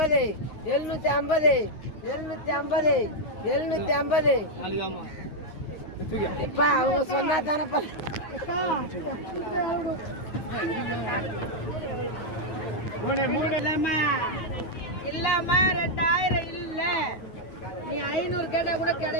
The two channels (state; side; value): late; right; 9.5 ms